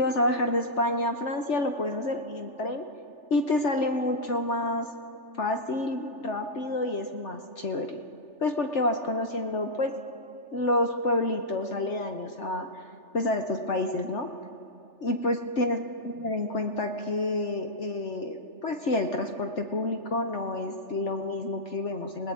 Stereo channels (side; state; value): right; late; 3.4 ms